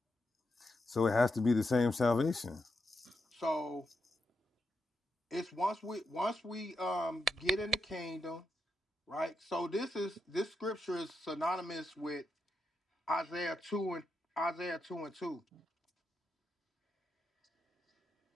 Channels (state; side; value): normal; both; correlation 0.84